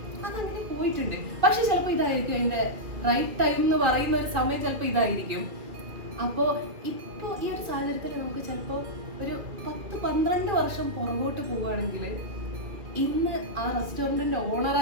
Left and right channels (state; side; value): late; left; 2.4 ms